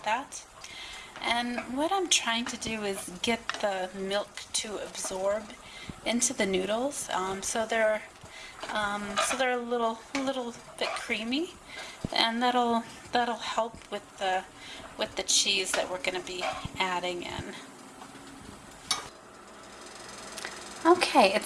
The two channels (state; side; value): identical; both; correlation 1.00